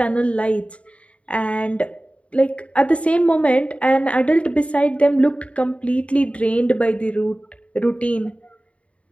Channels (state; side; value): late; right; 0.063 ms